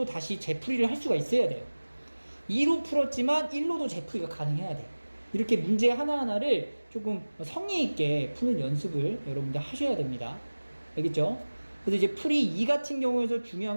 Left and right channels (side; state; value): both; inverted; correlation -1.00